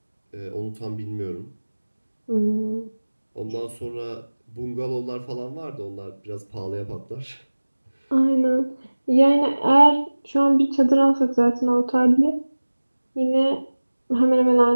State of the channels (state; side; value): inverted; both; correlation -1.00